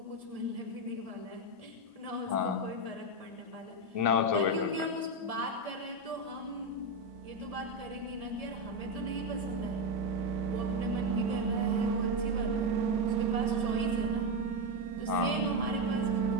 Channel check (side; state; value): left; late; 1.7 ms